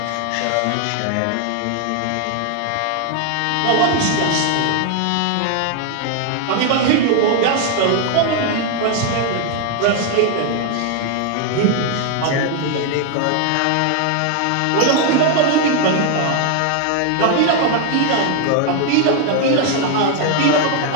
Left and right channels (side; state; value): both; different; correlation 0.00